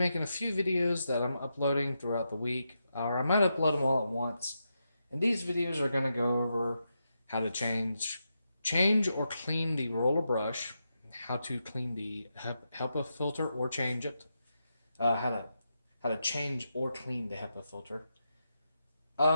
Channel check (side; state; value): both; inverted; correlation -0.85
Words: a few videos that I'm uploading throughout the week, or I might upload them all at once. And these videos are going to go over how to change or clean the roller brush, how to clean the HEPA filter or change it, how to change or clean the HEPA filter.